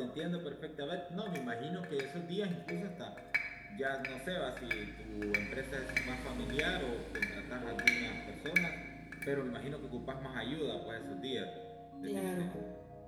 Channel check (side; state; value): both; identical; correlation 1.00